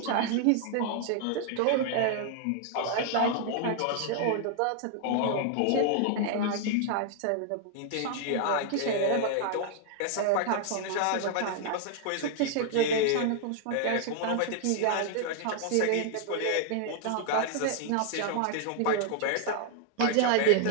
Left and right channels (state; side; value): different; both; correlation 0.00